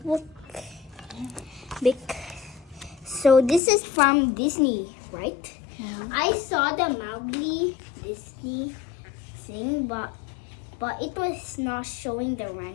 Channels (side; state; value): right; drops out; at 3.6 s